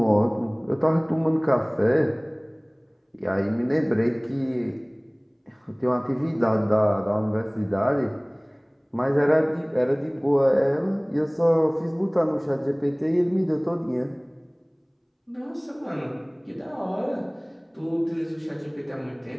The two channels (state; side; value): identical; both; correlation 1.00